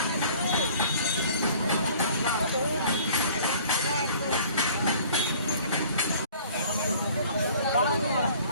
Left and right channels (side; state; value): both; inverted; correlation -0.51